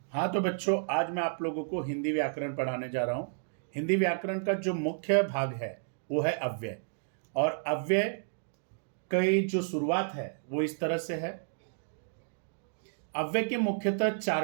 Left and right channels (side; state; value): left; silent; digital silence